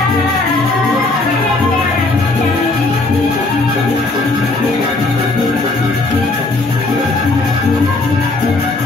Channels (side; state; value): right; quieter; 3.2 dB